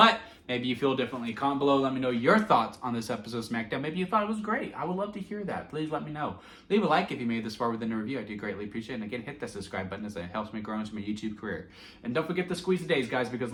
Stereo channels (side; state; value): both; identical; correlation 1.00